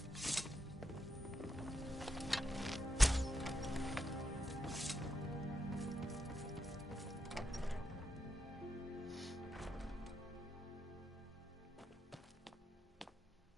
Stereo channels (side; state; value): both; normal; correlation 0.83